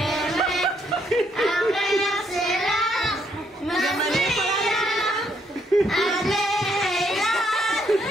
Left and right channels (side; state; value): both; normal; correlation 0.72